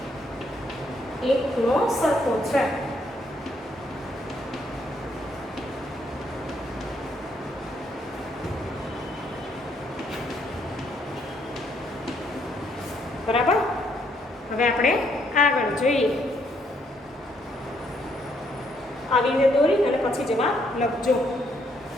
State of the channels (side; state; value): both; normal; correlation 0.71